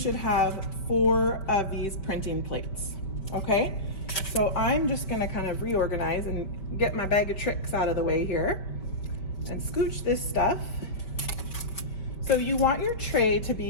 have 4 of these printing plates, okay? So I'm just gonna kind of reorganize and get my bag of tricks out of the way here and scooch this stuff. So you want your tray to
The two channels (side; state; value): right; late; 5.4 ms